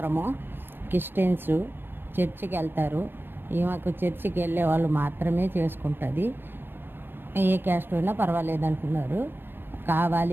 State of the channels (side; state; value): left; late; 0.10 ms